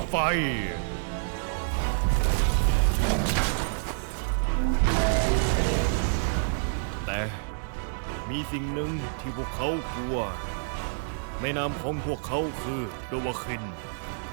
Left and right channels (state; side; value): silent; left; digital silence